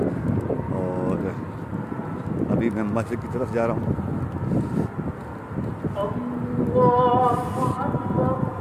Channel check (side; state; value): both; identical; correlation 1.00